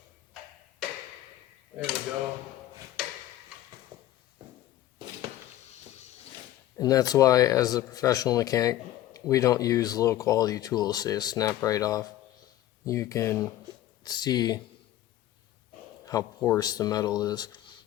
There we go. And that's why, as a professional mechanic, we don't use low quality tools. They just snap right off. You can see how porous the metal is.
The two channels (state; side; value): quieter; right; 13.9 dB